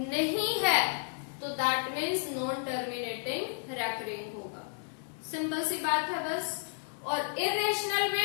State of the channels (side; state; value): right; silent; 56 dB below the other